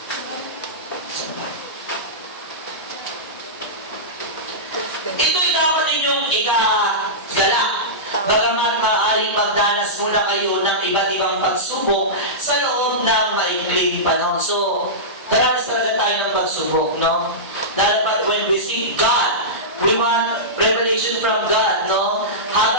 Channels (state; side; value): normal; both; correlation -0.16